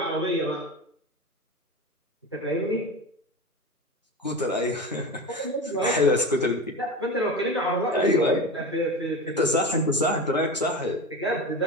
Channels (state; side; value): normal; both; correlation 0.27